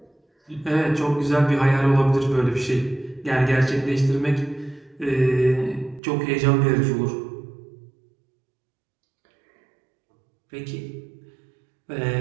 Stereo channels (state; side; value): drops out; left; at 6.0 s